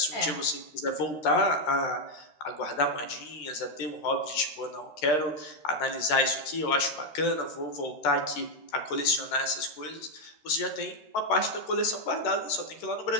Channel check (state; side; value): late; right; 13 ms